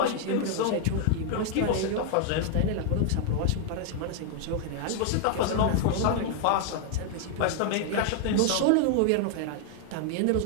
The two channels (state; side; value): different; both; correlation 0.00